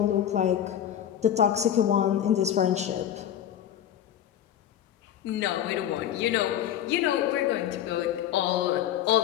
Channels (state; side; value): quieter; right; 10.6 dB